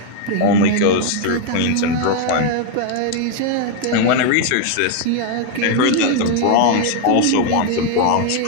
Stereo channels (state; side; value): different; both; correlation 0.01